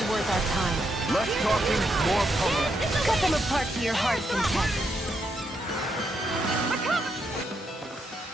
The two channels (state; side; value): normal; both; correlation 0.79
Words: worth our time. Less talking, more pummeling. Cut them apart to your heart's content.